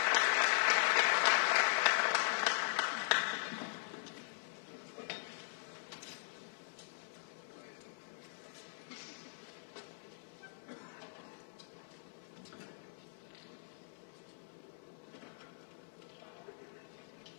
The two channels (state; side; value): silent; right; 51 dB below the other